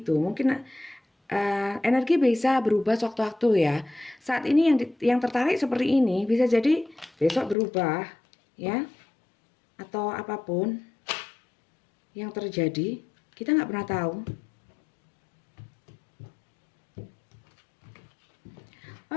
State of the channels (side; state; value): right; drops out; at 7.6 s